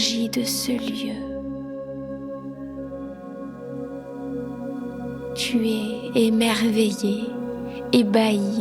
de ce lieu. Tu es émerveillé,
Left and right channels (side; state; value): both; identical; correlation 1.00